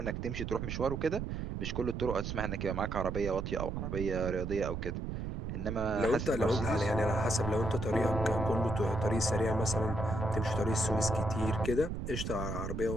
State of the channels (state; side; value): noise; right; rumble, 4 dB below the sound